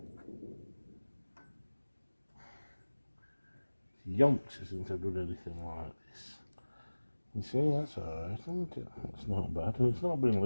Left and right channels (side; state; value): both; inverted; correlation -1.00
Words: Yonks isn't have done anything like this. You see, that's alright, isn't it? It's not bad, and it's not been